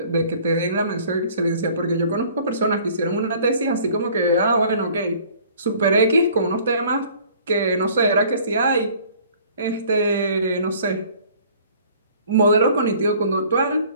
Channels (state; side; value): inverted; both; correlation -0.53